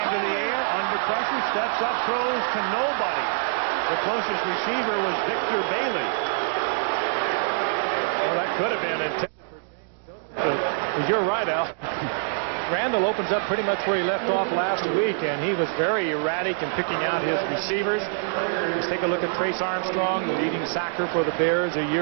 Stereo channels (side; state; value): left; silent; digital silence